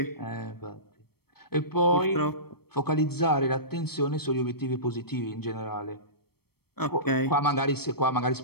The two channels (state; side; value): late; right; 0.96 ms